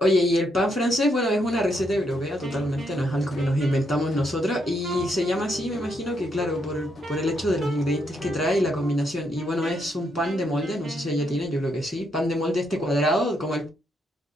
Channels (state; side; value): normal; both; correlation 0.77